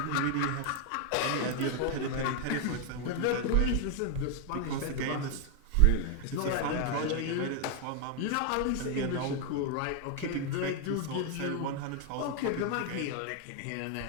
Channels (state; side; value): different; both; correlation 0.01